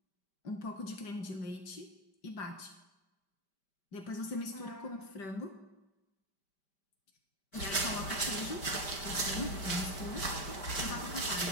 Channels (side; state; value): right; late; 5.1 ms